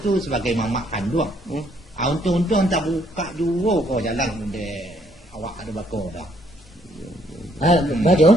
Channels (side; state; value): both; normal; correlation 0.68